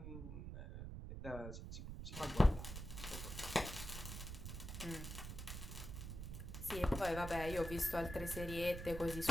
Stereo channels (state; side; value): noise; right; rumble, 7 dB below the sound